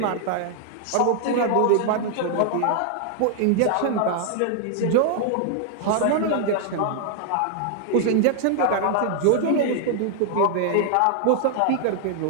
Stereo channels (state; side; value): different; both; correlation 0.00